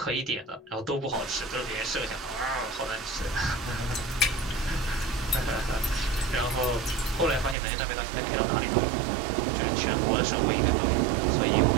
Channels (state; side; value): drops out; left; at 7.6 s